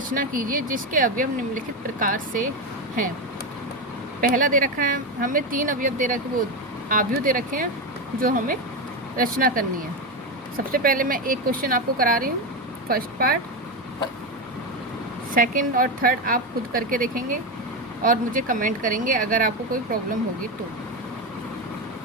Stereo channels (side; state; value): both; normal; correlation 0.13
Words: कीजिए जिसके अवयव निम्नलिखित प्रकार से हैं। पहला दे रखा है हमें 3 अवयव दे रखे, वो आव्यू दे रखे हैं जो हमें रचना करनी है। सबसे पहले मैं एक क्वेश्चन आपको करा रही हूँ, फर्स्ट पार्ट। सेकंड और थर्ड आप खुद करके देखेंगे और मुझे कमेंट करेंगे अगर आपको कोई प्रॉब्लम होगी तो।